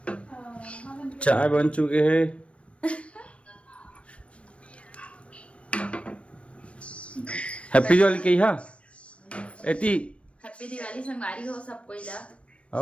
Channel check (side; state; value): right; late; 0.061 ms